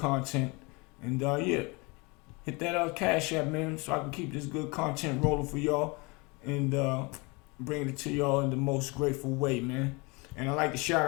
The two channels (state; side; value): quieter; right; 27.9 dB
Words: And hit that Cash App, man, so I can keep this good content rolling for y'all and bring it to y'all in the most grateful way, man. And I'd like to shout